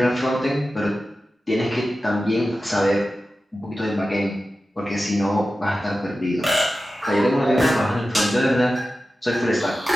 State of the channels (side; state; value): both; normal; correlation 0.94